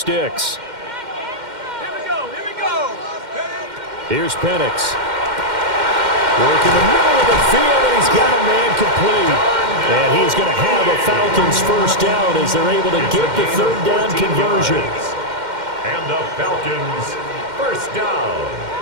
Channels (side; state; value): left; late; 2.1 ms